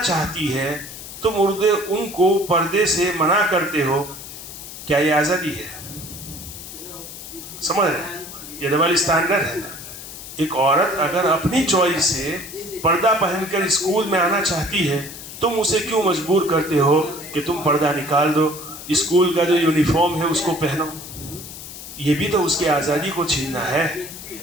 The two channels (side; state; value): left; noise; hiss, 12 dB below the sound